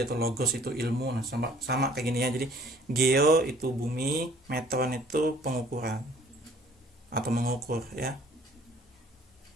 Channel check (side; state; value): both; normal; correlation 0.56